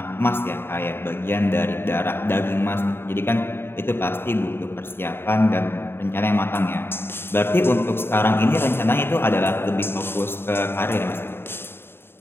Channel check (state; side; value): late; right; 0.11 ms